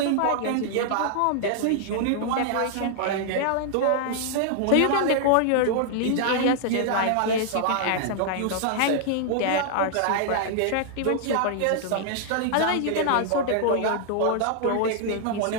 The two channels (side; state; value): both; different; correlation -0.01